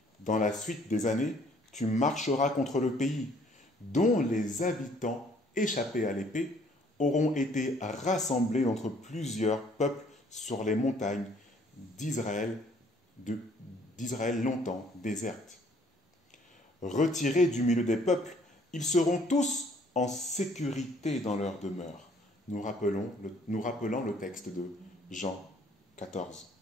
Dans la suite des années, tu marcheras contre le pays, dont les habitants échappés à l'épée auront été rassemblés entre plusieurs peuples sur les montagnes d'Israël longtemps désertes. Retirés du milieu des peuples, ils seront tous en sécurité dans leur demeure. Nous rappelons le texte de Jean 14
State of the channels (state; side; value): normal; both; correlation 0.61